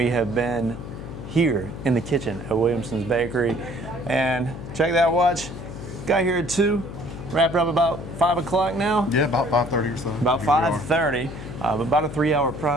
have been here in the kitchen at Williamson's Bakery, and check that watch. Got here at 2, wrapped up about 5 o'clock now. Yeah, about 5:30 or so. About 5:30, about a 3-hour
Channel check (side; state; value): left; noise; hum, 10 dB below the sound